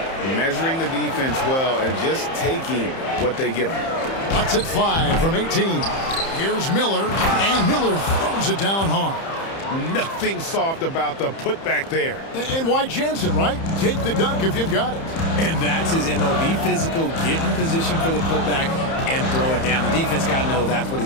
measuring the defense well, and just taking what they give them. Lets it fly from 18. Here's Miller, and Miller throws it down hard. Nothing soft about the putback there. And why chance it, right? Take the dunk if you've got it. And that's his MOB physical, get in position for the putback and throw it down. The defense got to know that's what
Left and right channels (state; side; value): late; right; 30 ms